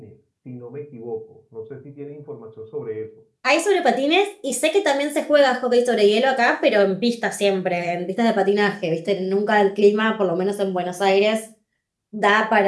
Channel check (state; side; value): identical; both; correlation 1.00